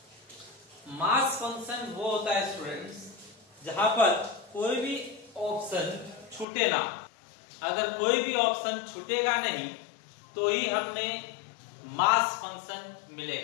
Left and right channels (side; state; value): right; drops out; at 6.5 s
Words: मास फंक्शन वो होता है स्टूडेंट्स जहां पर कोई भी ऑप्शन छूटे ना। अगर कोई भी ऑप्शन छूटेगा नहीं तो ही हमें मास फंक्शन